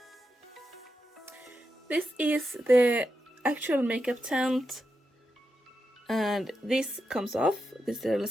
This is the actual makeup tent, and this comes off, this little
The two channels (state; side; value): normal; both; correlation 0.87